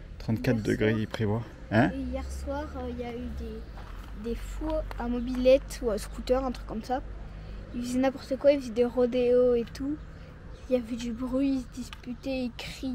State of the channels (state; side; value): identical; both; correlation 1.00